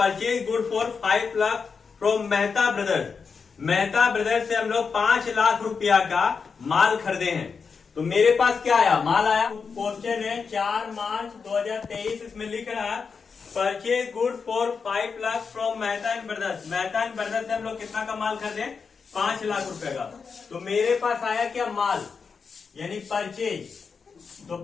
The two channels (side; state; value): right; quieter; 5.5 dB